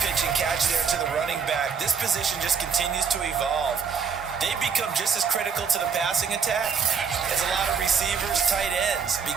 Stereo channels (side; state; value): left; quieter; 6.4 dB